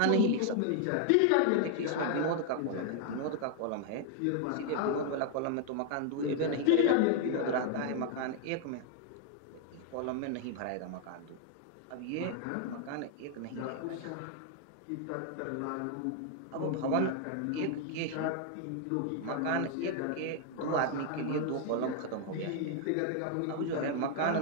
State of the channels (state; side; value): different; both; correlation 0.00